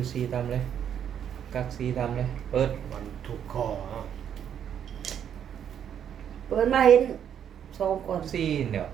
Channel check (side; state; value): left; quieter; 9.0 dB